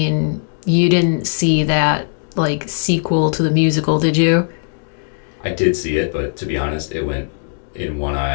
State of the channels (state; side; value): silent; right; digital silence